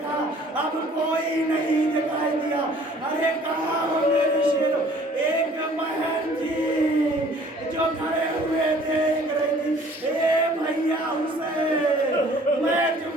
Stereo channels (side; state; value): both; normal; correlation 0.54